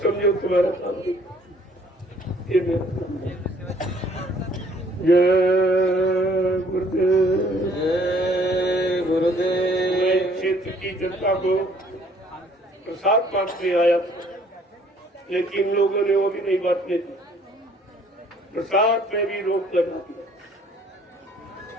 तुम्हारा काम नहीं, ये मेरा काम नहीं। जय गुरुदेव, जय गुरुदेव। मैं क्षेत्र की जनता को प्रसाद बांटने आया था, लेकिन लोगों ने वो भी नहीं बांटने दी। प्रसाद में भी रोक लगा दिया।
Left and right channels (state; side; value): normal; both; correlation 0.59